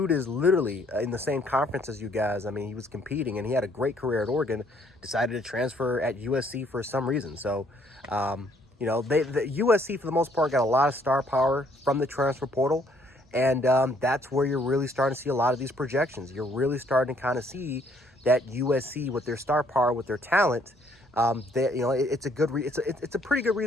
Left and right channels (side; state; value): both; normal; correlation 0.65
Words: is literally in the same conference as you guys. He was competing, and he had a great career at Oregon, decided to transfer at USC for some reason. So, the USC, for the most part, got a lot of star power from the transfer portal. And that's where you're really starting to see a lot of these projections. You're really starting to kind of see that USC, with their star power, with their talent, it's a pretty good